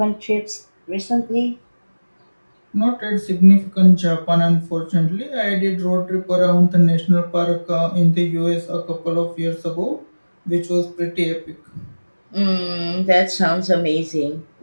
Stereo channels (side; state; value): both; inverted; correlation -1.00